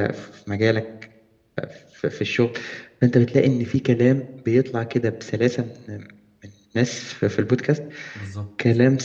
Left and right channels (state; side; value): identical; both; correlation 1.00